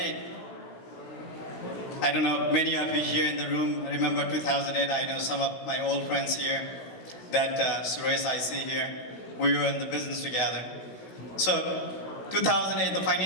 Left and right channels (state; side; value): late; right; 16 ms